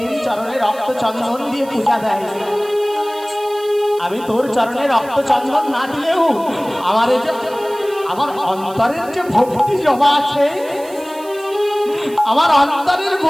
চরণে রক্ত চন্দন দিয়ে পূজা দেয়। আমি তোর চরণে রক্ত চন্দন না দিলেও আমার এই যে আমার অন্তরের যে ভক্তি জমা আছে, আমার অন্তরের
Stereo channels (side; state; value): right; noise; hiss, 21 dB below the sound